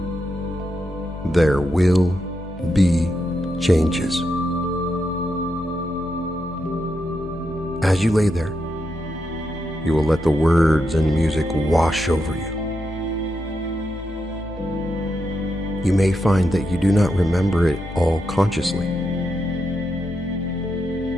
There will be changes. As you lay there, you will let the words and music wash over you. You may find that you do not remember it all consciously.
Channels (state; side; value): normal; both; correlation 0.84